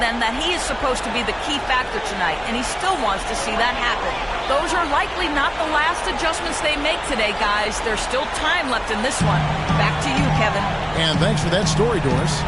that he is supposed to be the key factor tonight, and he still wants to see that happen. Those are likely not the last adjustments they make today, guys. There's still time left in this one. Back to you, Kevin. And thanks for that story, Doris.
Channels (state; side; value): identical; both; correlation 1.00